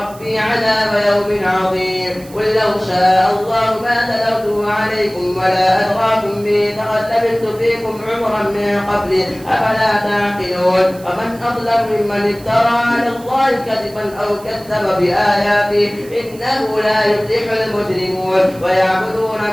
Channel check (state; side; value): noise; right; hiss, 22 dB below the sound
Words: عذاب يوم عظيم. قل لو شاء الله ما تلوته عليكم ولا أدراكم به لقد لبثت فيكم عمرا من قبل أفلا تعقلون. ومن أظلم ممن افترى على الله كذبا أو كذب بآياته إنه لا يفلح المجرمون. ويعبدون